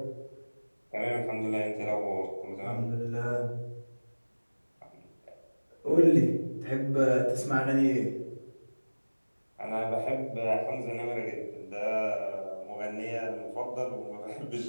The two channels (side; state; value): both; inverted; correlation -1.00